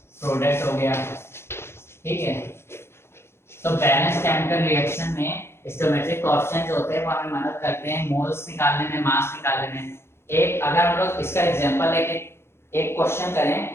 हो गया। ठीक है, तो बैलेंस केमिकल रिएक्शन में स्टोइकोमेट्रिक कोएफिशिएंट जो होते हैं वो हमें मदद करते हैं मोल्स निकालने में, मास निकालने में। एक अगर हम लोग इसका एग्जांपल लेके एक क्वेश्चन करें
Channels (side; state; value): right; late; 0.12 ms